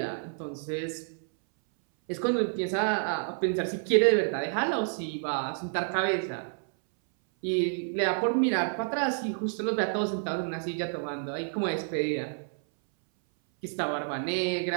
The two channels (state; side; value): silent; left; 58 dB below the other